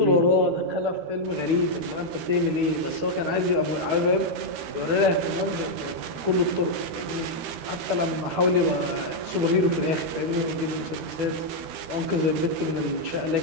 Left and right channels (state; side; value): late; left; 13 ms